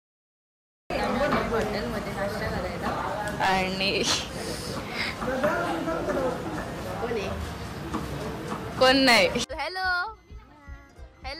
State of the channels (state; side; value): identical; both; correlation 1.00